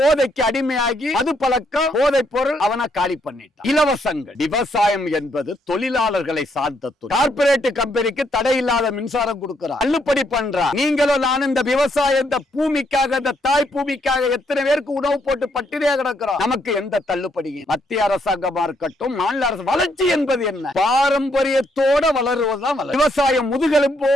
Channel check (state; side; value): normal; both; correlation 0.74